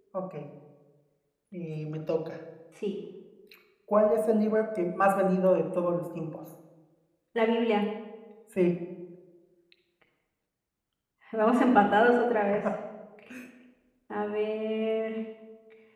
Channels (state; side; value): identical; both; correlation 1.00